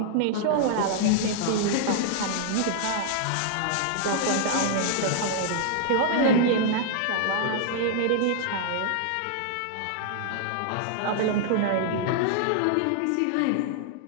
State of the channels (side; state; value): both; different; correlation -0.01